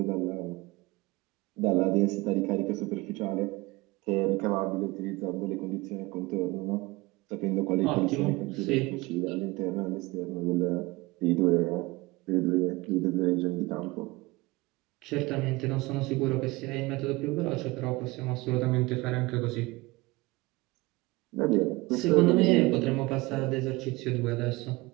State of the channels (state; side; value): quieter; left; 22.3 dB